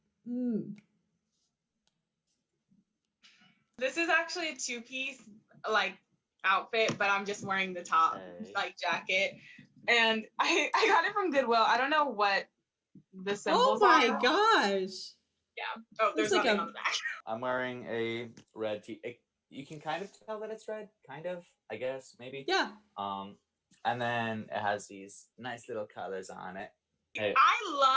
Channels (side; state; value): both; identical; correlation 1.00